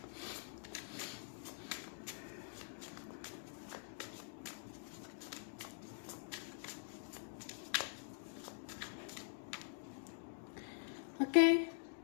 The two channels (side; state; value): right; silent; digital silence